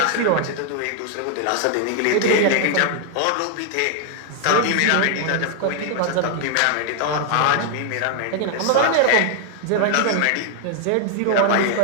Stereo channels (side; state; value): both; different; correlation 0.00